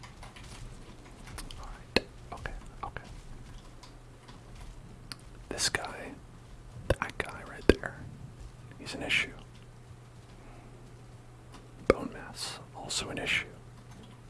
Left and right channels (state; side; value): identical; both; correlation 1.00